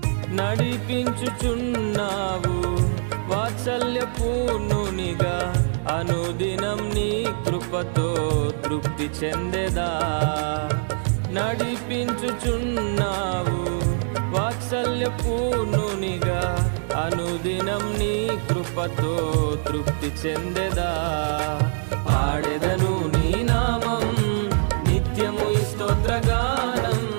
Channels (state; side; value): silent; left; 63 dB below the other